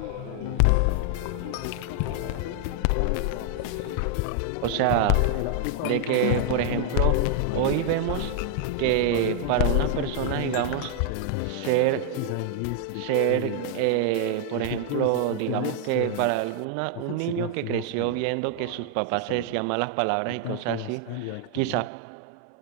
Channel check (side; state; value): both; different; correlation 0.00